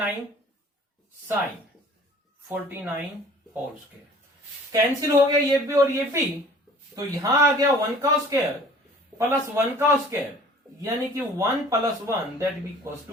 साइन 49 होल स्क्वायर, कैंसिल हो गया ये भी और ये भी, तो यहां आ गया 1 का स्क्वायर प्लस 1 का स्क्वायर, यानी कि 1 plus 1 that be equals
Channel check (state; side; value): normal; both; correlation 0.49